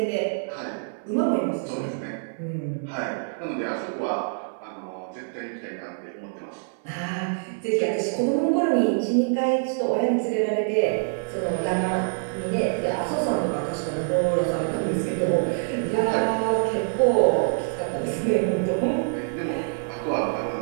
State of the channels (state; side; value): silent; left; 61 dB below the other